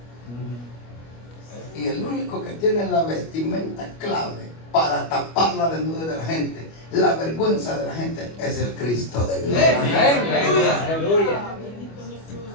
Y el único que tiene la vestimenta clave para tapar la desnudez de la gente, la vergüenza de la gente, es el Cristo de gloria. Aleluya.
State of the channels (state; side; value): late; right; 25 ms